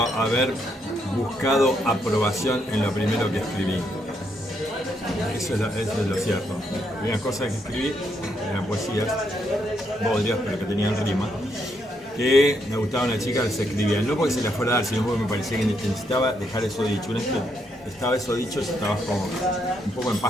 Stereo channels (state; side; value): normal; both; correlation 0.76